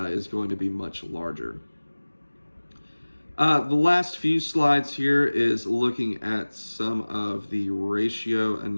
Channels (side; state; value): both; inverted; correlation -1.00